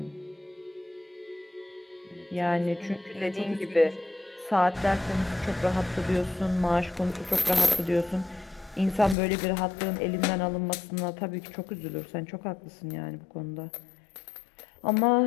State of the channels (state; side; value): drops out; right; at 9.2 s